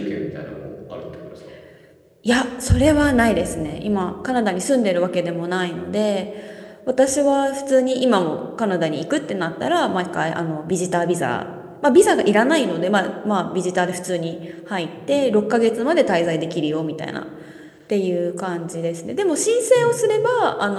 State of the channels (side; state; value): both; identical; correlation 1.00